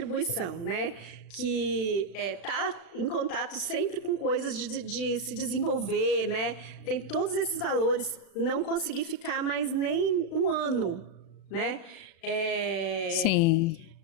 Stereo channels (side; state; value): right; late; 36 ms